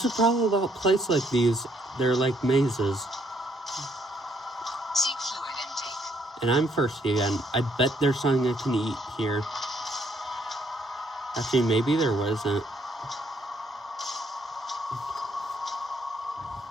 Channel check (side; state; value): both; normal; correlation 0.70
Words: the problem about places like these. They're like mazes. Seek fluid intake. And I'm thirsty again. I bet there's something I can eat here. Actually, maybe there wasn't.